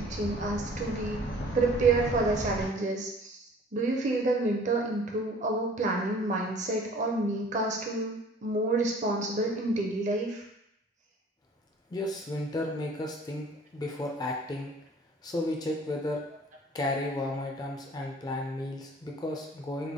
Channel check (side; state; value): both; normal; correlation 0.50